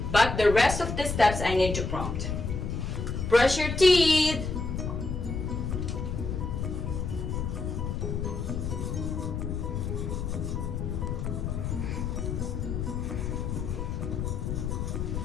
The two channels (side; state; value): left; noise; rumble, 2 dB below the sound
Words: But the rest of the steps I need to prompt. Brush your teeth.